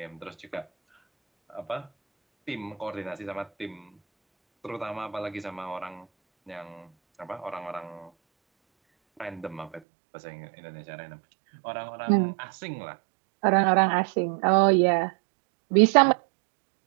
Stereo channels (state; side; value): drops out; left; at 9.8 s